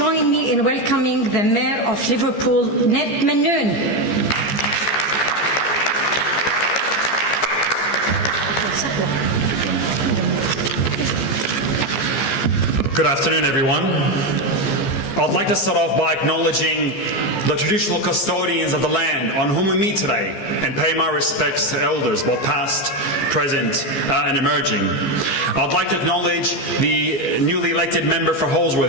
me in welcoming the Mayor of Liverpool, Ned Manoon. Good afternoon, everyone. I'd like to start off by acknowledging the traditional custodians of the land on whom we meet today and pay my respects to elders, both past, present, and emerging. I'd like to acknowledge the newly elected member for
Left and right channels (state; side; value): late; right; 15 ms